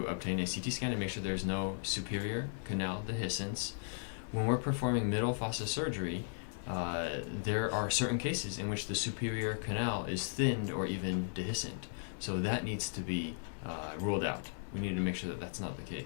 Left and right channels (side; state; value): right; silent; 54 dB below the other